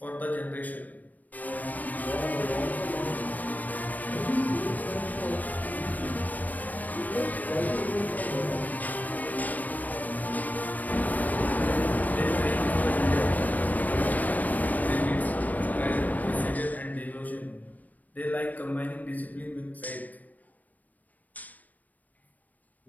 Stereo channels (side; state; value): right; late; 0.079 ms